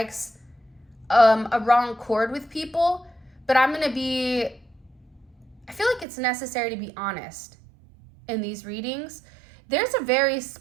a wrong chord with people, but I feel like it's necessary to be honest in these readings. There's a very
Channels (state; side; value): drops out; left; at 6.1 s